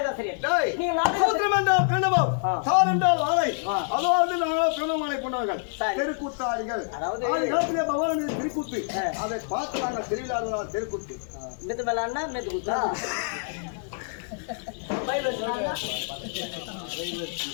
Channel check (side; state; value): right; silent; digital silence